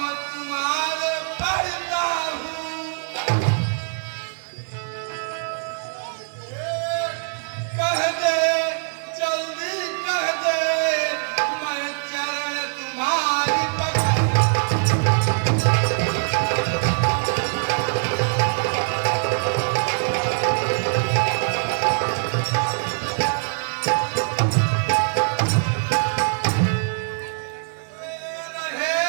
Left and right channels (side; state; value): left; silent; digital silence